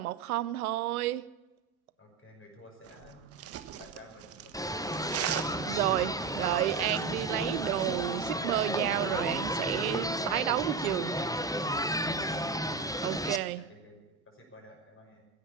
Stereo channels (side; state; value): left; quieter; 5.1 dB